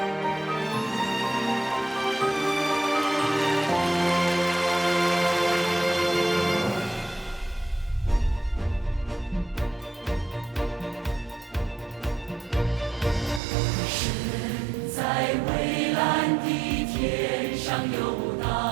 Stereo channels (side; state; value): left; drops out; at 13.4 s